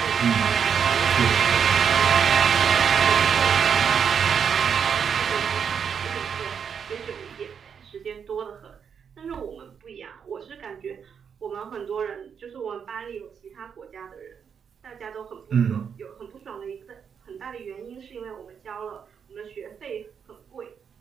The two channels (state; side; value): quieter; left; 7.1 dB